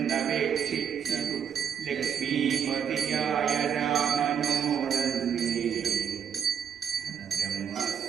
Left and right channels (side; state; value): left; quieter; 7.8 dB